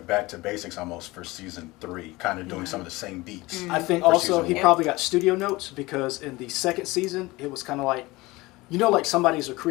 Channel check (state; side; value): quieter; right; 21.1 dB